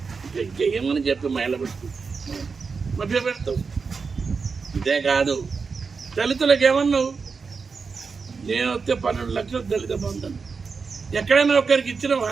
ఇంకా ఏమని చెప్పి మహిళ పెట్టు మభ్య పెడతావు. ఇదే కాదు, దళితులకు ఏమన్నావు? నేను వస్తే 12 లక్షలు దళిత బంధు అన్నావు. ఎక్కడైనా ఒక్కరికి ఇచ్చినవా?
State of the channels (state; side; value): quieter; left; 5.1 dB